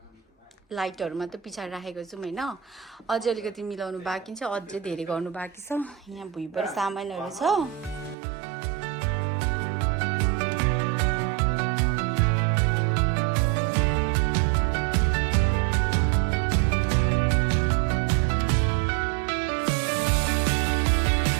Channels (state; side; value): drops out; left; at 8.2 s